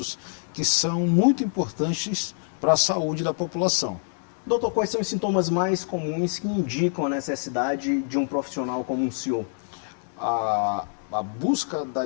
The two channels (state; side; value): silent; right; 61 dB below the other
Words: que são muito importantes para a saúde da população. Doutor, quais são os sintomas mais comuns que indicam a necessidade de um profissional como o senhor? A busca da